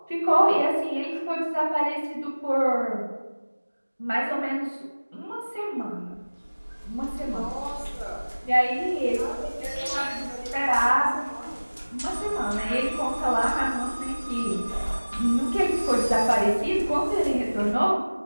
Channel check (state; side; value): inverted; both; correlation -1.00